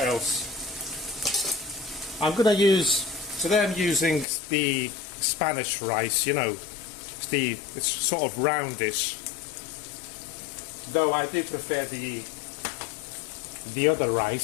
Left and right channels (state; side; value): drops out; right; at 4.2 s